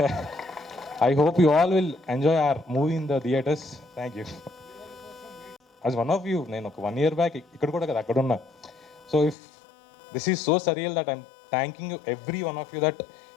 I hope you all will enjoy hour movie in the theatres. Thank you. As one of you నేను ఒక 1 year back ఇక్కడ కూడా కదా అక్కడ ఉన్నా. So if this is so surreal that I'm thanking you every one of you that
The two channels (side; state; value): right; drops out; at 9.3 s